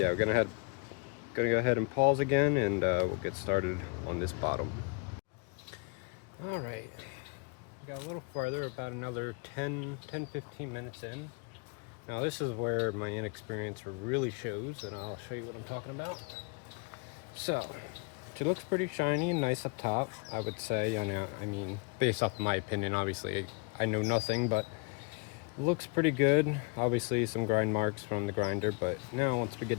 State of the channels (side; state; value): right; quieter; 32.4 dB